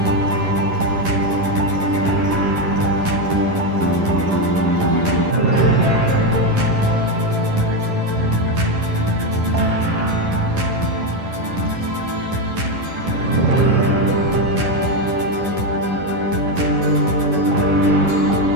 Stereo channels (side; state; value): left; late; 11 ms